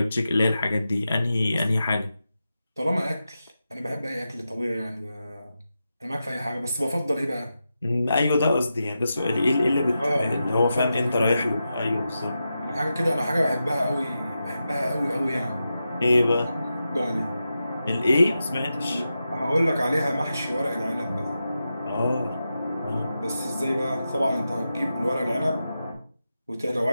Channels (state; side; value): inverted; both; correlation -0.90